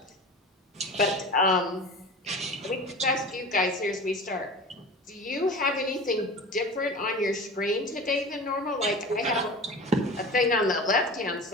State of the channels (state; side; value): normal; both; correlation 0.35